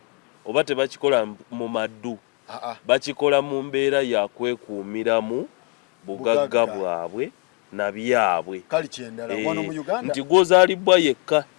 oba tebakikola mu maddu bakikola mu mbeera ya kwekuumiramu bugagga bwabwe na byabwe kali kyendala wano mu Uganda nti gwozaalibwa yekka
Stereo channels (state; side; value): quieter; right; 33.6 dB